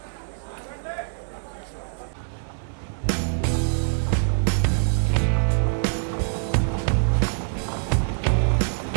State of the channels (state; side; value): silent; left; 62 dB below the other